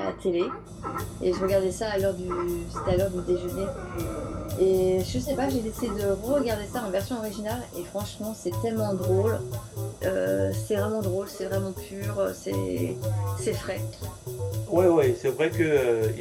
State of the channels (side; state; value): both; identical; correlation 1.00